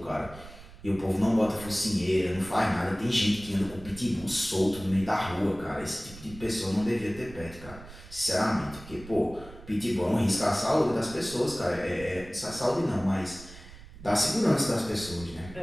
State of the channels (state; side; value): noise; right; rumble, 17 dB below the sound